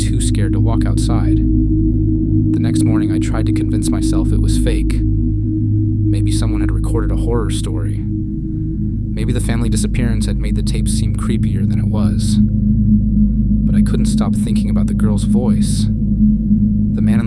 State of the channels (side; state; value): both; identical; correlation 1.00